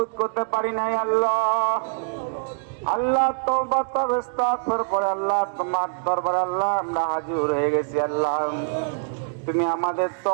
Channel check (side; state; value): left; silent; digital silence